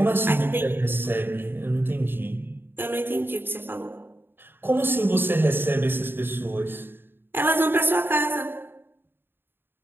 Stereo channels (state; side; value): late; left; 0.10 ms